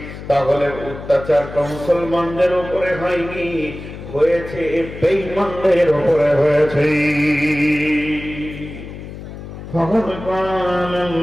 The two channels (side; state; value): left; noise; hum, 12 dB below the sound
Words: তাহলে অত্যাচারটা মুসলমানদের উপরে হয়নি, হয়েছে বেঈমানদের উপরে হয়েছে। فقد قال